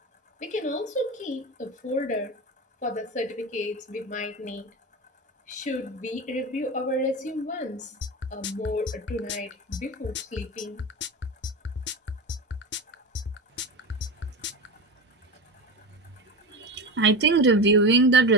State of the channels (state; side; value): normal; both; correlation 0.24